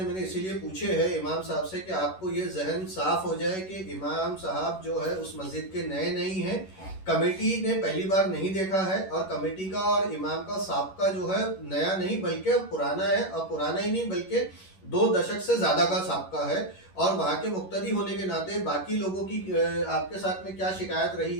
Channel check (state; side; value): late; right; 11 ms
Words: मैंने इसीलिए पूछे हैं इमाम साहब से कि आपको ये जहन साफ हो जाए कि इमाम साहब जो है उस मस्जिद के नए नहीं हैं, कमेटी ने पहली बार नहीं देखा है और कमेटी का और इमाम का साबका जो है नया नहीं बल्कि पुराना है, और पुराना ही नहीं बल्कि 2 दशक से ज़्यादा का साबका है। और वहाँ के मुक्तदी होने के नाते बाकी लोगों की आपके साथ में क्या शिकायत रही